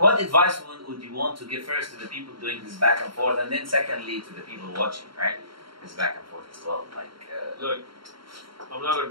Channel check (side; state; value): left; late; 0.73 ms